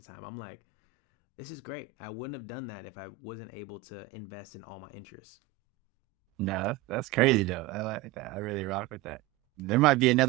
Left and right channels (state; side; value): quieter; left; 14.0 dB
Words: time. I'm like, this is great. I wouldn't have done that if I wasn't able to invest in all my interests. No, that's crazy though. I like that. I really rock with that. There might be